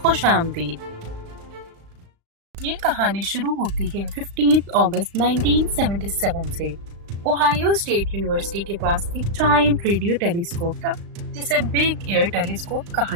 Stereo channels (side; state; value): left; late; 35 ms